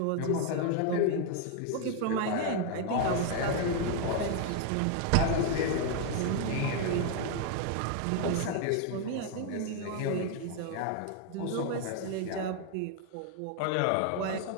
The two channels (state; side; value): different; both; correlation 0.00